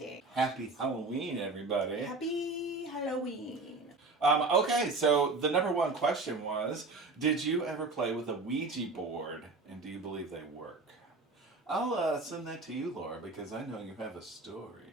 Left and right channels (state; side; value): quieter; left; 3.5 dB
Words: Happy Halloween, everybody. Happy Halloween. Okay, so the number one question was, did you ever play with a Ouija board, and do you believe they work? I'll send that to you, Laura, because I know you have a story.